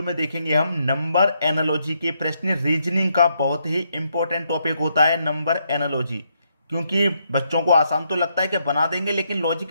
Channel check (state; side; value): inverted; both; correlation -0.77